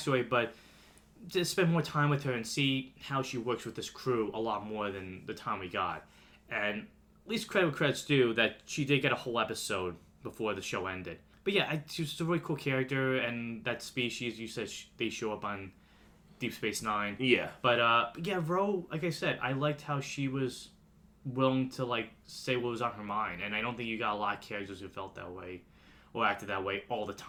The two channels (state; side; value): identical; both; correlation 1.00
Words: but to spend more time with her and see how she works with this crew a lot more than the time we got. And at least credit where credit's due that she did get a whole episode before the show ended. But yeah, she's a really cool character, and that species, you said they show up on Deep Space Nine. Yeah. But yeah, Ro, like I said, I liked how she was willing to like say what was on her mind, and I don't think you got a lot of characters who felt that way or acted that way all the